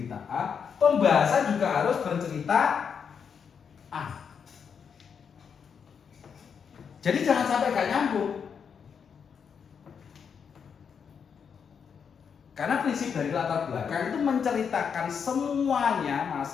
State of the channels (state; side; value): quieter; right; 6.8 dB